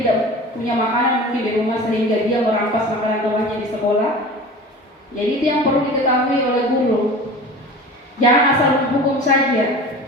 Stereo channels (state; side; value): normal; both; correlation 0.37